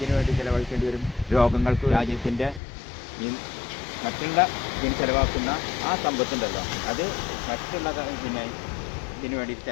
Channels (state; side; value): drops out; right; at 2.6 s